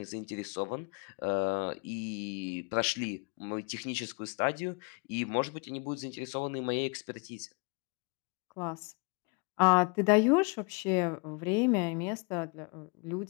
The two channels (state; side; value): quieter; right; 32.5 dB